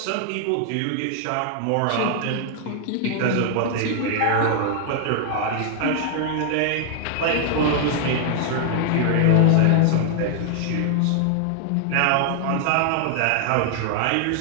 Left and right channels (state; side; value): different; both; correlation 0.00